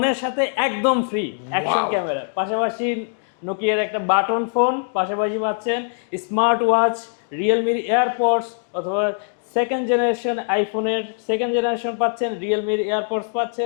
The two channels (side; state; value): right; silent; digital silence